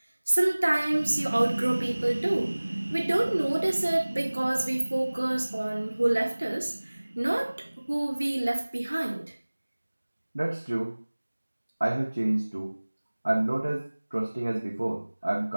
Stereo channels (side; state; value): both; inverted; correlation -1.00